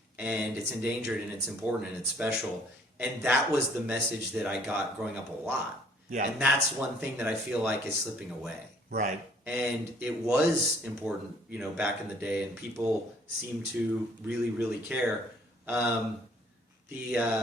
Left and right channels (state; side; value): normal; both; correlation 0.59